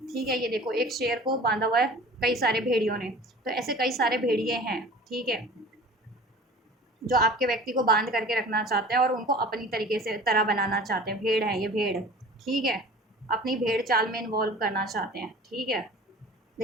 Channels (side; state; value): both; normal; correlation 0.43